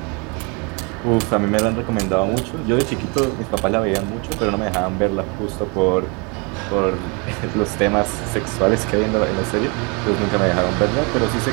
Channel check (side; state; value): left; quieter; 31.8 dB